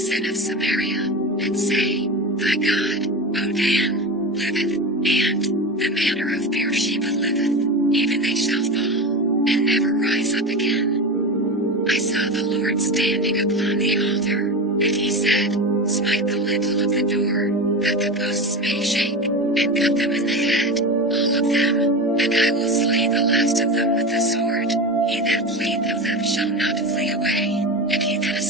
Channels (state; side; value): normal; both; correlation 0.24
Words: of Samaria, and say, thy God, O Dan, liveth, and the manner of Beersheba liveth, even they shall fall, and never rise up again. I saw the Lord standing upon the altar, and he said, smite the lintel of the door, that the posts may shake, and cut them in the head, all of them, and I will slay the last of them with the sword. He that fleeth of them shall not flee away, and he that